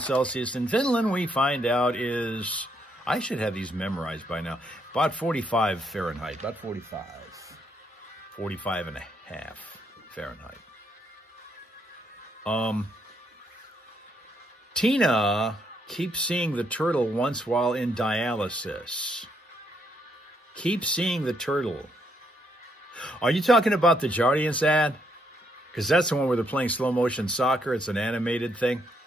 Celsius in Finland, we find out is, I should have these memorized by now, about 45 Fahrenheit, about 45. 45 and a half Fahrenheit. Tina keeps seeing the turtle once while in dialysis. Keep seeing the turtle. Are you talking about the Jardiance ad? Because that's the one where they're playing slow motion soccer. It's an animated thing.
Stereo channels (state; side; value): normal; both; correlation 0.74